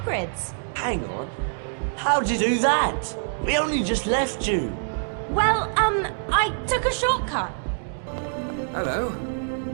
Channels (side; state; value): left; silent; digital silence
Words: Hang on. How'd you do that? We only just left you. Well, I took a shortcut. Hello.